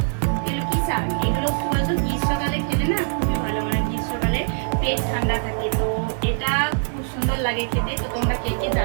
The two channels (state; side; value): silent; left; digital silence